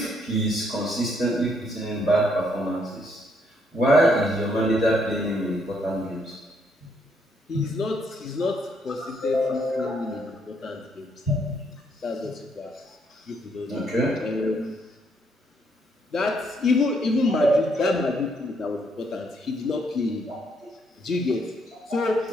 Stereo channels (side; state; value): both; normal; correlation 0.72